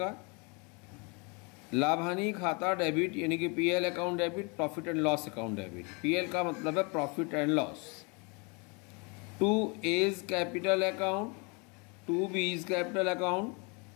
लाभ हानि खाता डेबिट यानी कि PL account debit, profit and loss account debit. PL का मतलब है profit and loss. 2A is capital account, 2B is capital account,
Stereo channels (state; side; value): quieter; right; 31.7 dB